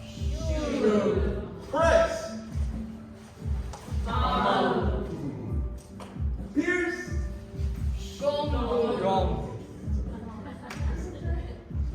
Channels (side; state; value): both; identical; correlation 1.00